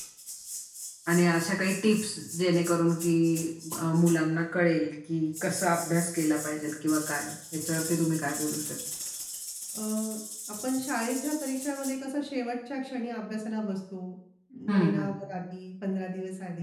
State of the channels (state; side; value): identical; both; correlation 1.00